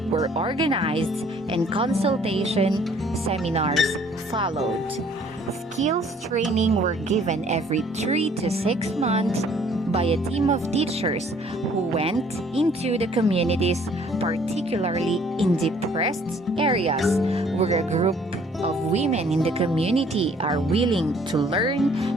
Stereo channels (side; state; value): both; normal; correlation 0.59